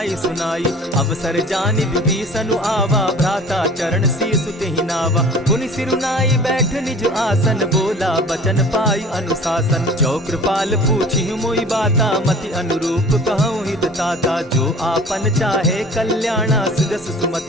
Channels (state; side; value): normal; both; correlation 0.45